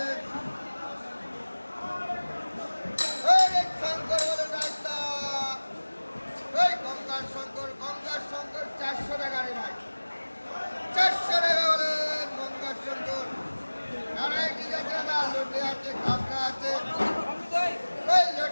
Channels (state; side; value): inverted; both; correlation -1.00